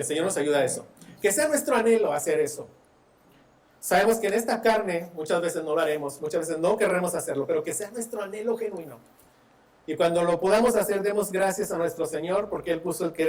Señor nos ayude a eso. Que sea nuestro anhelo hacer eso. Sabemos que en esta carne muchas veces no lo haremos, muchas veces no querremos hacerlo, pero que sea nuestro anhelo genuino. Y cuando lo podamos hacer, demos gracias a nuestro Señor, porque Él puso el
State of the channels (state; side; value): identical; both; correlation 1.00